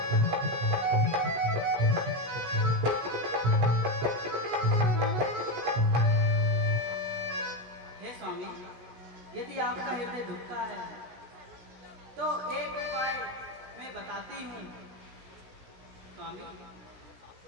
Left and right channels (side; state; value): left; late; 16 ms